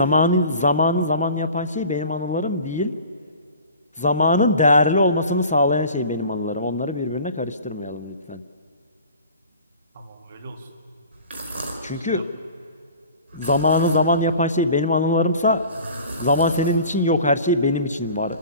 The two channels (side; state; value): both; inverted; correlation -0.43